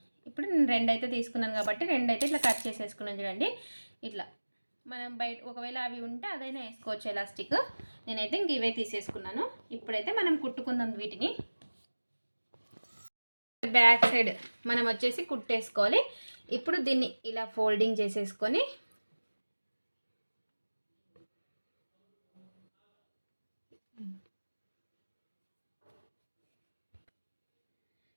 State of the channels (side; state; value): both; inverted; correlation -1.00